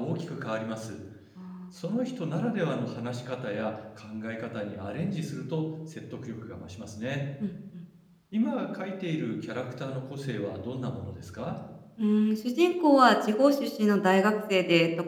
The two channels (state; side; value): identical; both; correlation 1.00